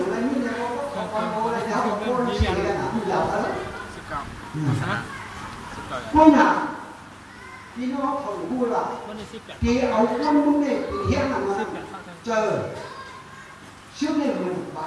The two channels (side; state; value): both; identical; correlation 1.00